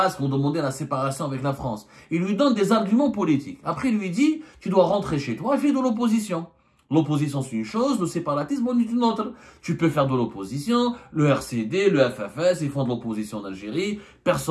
ont demandé la séparation avec la France? Il lui donne des arguments politiques. Après, il lui dit, tu dois rentrer chez toi et faire de l'opposition. L'opposition, c'est une chose, le séparatisme, c'est une autre. Tu peux faire de l'opposition, le RCD, le FFS, ils font de l'opposition en Algérie,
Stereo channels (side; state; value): both; identical; correlation 1.00